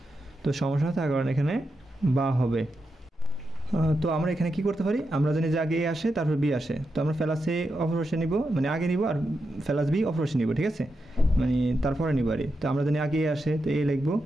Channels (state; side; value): normal; both; correlation 0.87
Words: তো সমস্যা থাকার কারণে এখানে বা হবে। তো আমরা এখানে কি করতে পারি, আমরা জানি যে আগে এ আসে তারপর বি আসে, তো আমরা ফেলাস এ অপরপাশে নিব, মানে আগে নিব, আর ফেলাস বি অপরপাশে নিব, ঠিক আছে, মানে তারপরে নিব আর। তো আমরা জানি আগে এ আসে তো এ লিখবো,